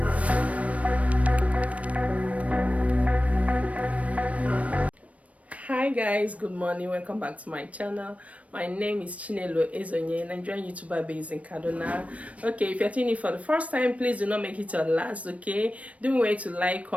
Hi guys, good morning, welcome back to my channel. My name is Chinelo Ezeonye, Nigerian YouTuber based in Kaduna. Okay, if you're tuning in for the first time, please do not make it your last. Okay, don't wait to like,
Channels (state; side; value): late; left; 0.066 ms